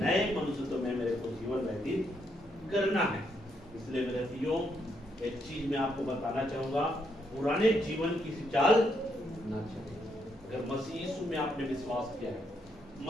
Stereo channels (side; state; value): both; normal; correlation 0.77